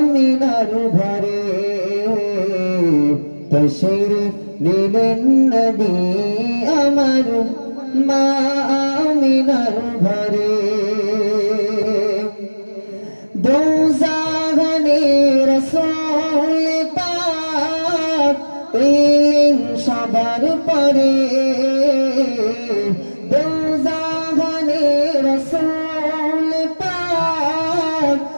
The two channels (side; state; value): both; inverted; correlation -1.00